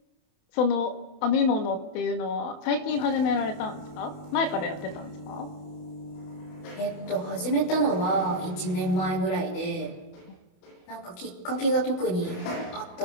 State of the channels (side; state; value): right; late; 28 ms